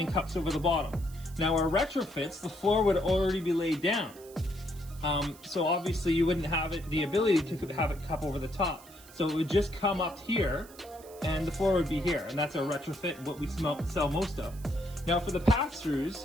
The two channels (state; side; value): noise; right; hiss, 21 dB below the sound